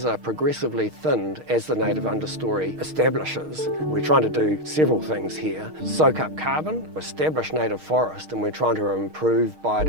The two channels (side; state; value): left; late; 6.5 ms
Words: are progressively thinned as the native understory establishes. We're trying to do several things here. Soak up carbon, establish native forest, and we're trying to improve